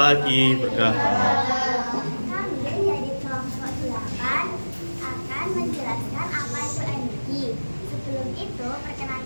pagi, berkah. Kami dari kelompok 8 akan menjelaskan apa itu energi. Sebelum itu,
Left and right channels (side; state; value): both; inverted; correlation -1.00